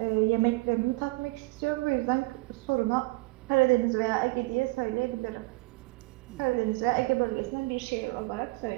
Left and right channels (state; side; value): quieter; left; 24.3 dB